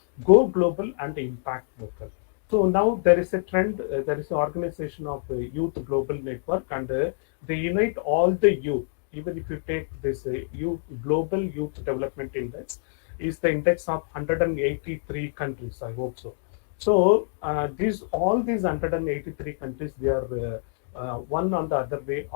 go global and impact local. So now there is a trend, there is an organization of youth global network, and they unite all the youth. Even if you take this youth global youth development index, is the index of 183 countries. I hope so. So these all these 183 countries, they are one on the other way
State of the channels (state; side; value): silent; right; digital silence